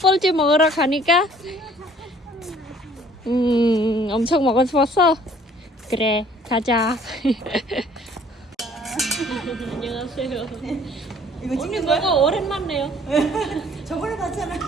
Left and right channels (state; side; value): normal; both; correlation 0.56